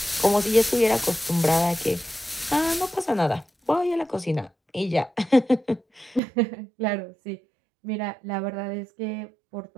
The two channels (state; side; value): drops out; left; at 6.2 s